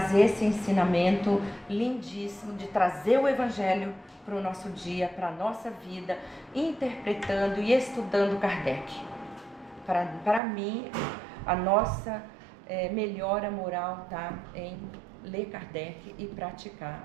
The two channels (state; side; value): drops out; left; at 10.4 s